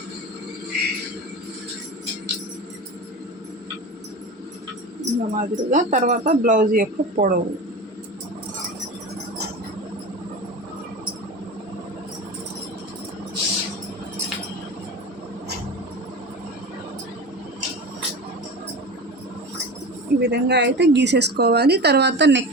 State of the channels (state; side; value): normal; both; correlation 0.30